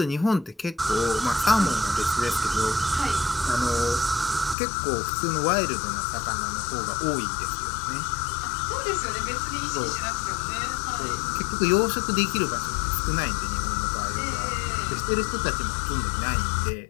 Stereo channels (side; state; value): right; drops out; at 4.5 s